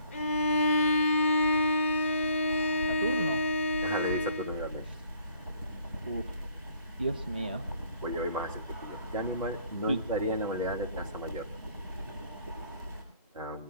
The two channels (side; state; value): both; inverted; correlation -0.60